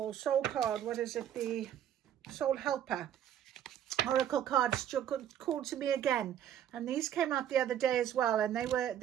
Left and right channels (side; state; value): left; quieter; 10.2 dB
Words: Soul card, what is it? The Soul Helper Oracle cards called to me again, and these came out the other day as well, and